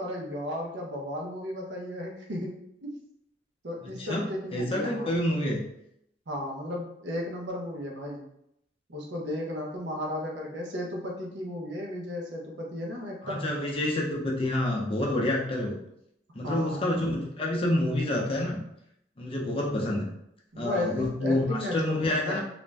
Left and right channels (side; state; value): both; normal; correlation 0.60